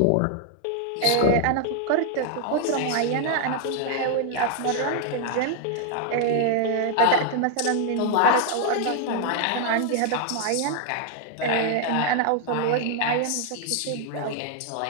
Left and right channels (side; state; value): both; different; correlation 0.00